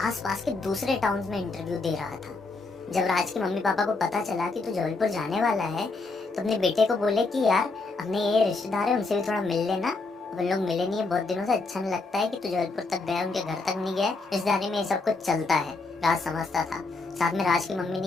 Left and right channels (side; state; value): right; quieter; 3.7 dB